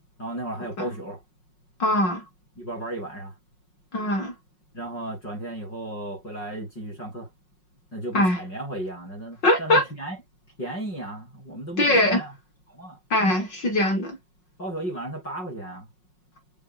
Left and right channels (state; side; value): late; right; 5.5 ms